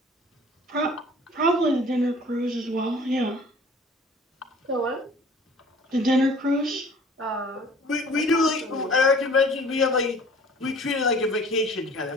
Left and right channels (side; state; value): both; normal; correlation 0.49